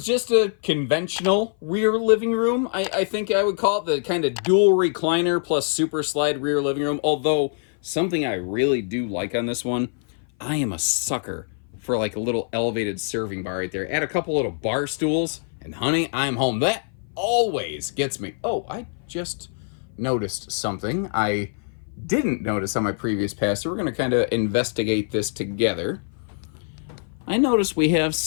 just a conventional rear living room. I think I would call it the kind of dual recliner plus super slide rear living room. Although, something I really do like on this one, I am a sucker for like a little elevated serving bar right there. Add a couple little bar stools, and honey, I'm home. That always gets me. Oh, I just noticed something I didn't notice on my previous pass, so we're going to kind of investigate this together. I noticed we have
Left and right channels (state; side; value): silent; right; 57 dB below the other